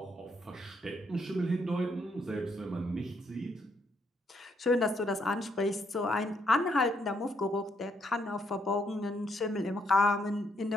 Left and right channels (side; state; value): both; normal; correlation 0.73